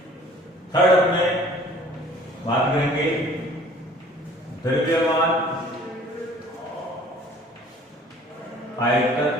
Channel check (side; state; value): both; normal; correlation 0.52